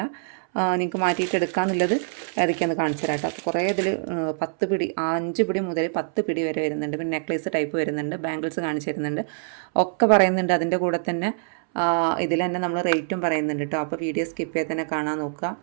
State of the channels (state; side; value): silent; left; 62 dB below the other